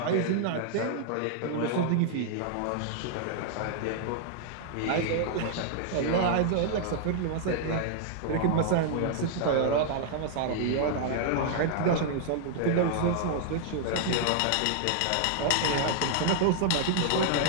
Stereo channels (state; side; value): different; both; correlation -0.01